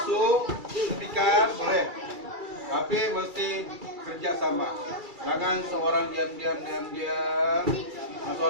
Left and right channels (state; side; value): late; left; 2.3 ms